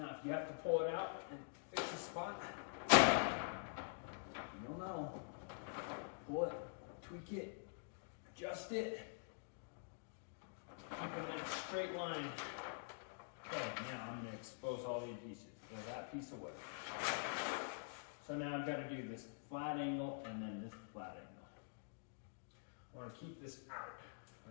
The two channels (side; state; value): right; silent; digital silence